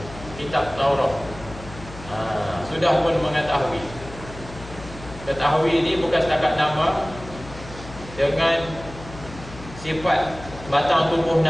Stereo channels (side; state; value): left; noise; hum, 15 dB below the sound